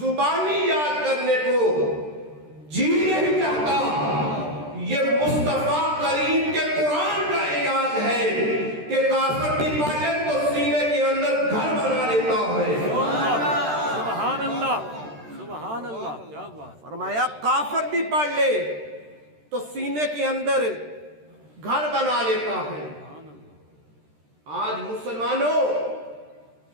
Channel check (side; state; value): left; late; 13 ms